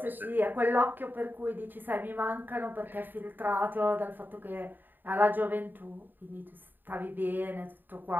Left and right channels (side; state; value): left; late; 0.091 ms